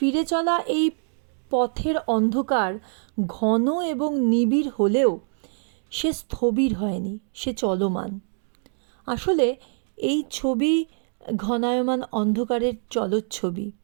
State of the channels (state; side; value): silent; left; 62 dB below the other